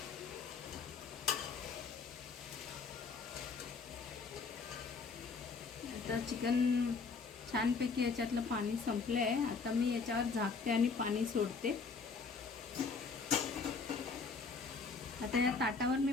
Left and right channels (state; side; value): quieter; right; 4.8 dB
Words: आता चिकन छानपैकी याच्यातलं पाणी संपलं आहे. आता मी याच्यावर झाकते आणि पाणी सोडते. आता या ताटावर मी